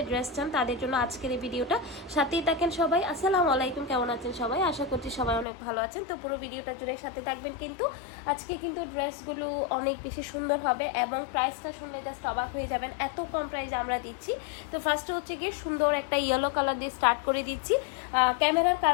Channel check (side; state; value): right; drops out; at 5.5 s